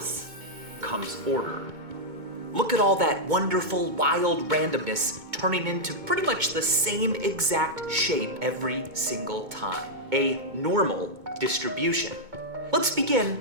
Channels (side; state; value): left; late; 2.2 ms